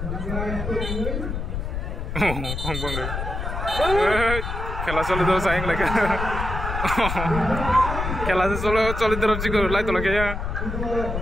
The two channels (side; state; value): left; noise; rumble, 4 dB below the sound